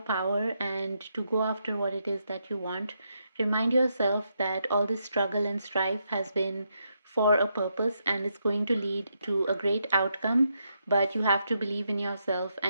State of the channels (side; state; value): both; inverted; correlation -0.80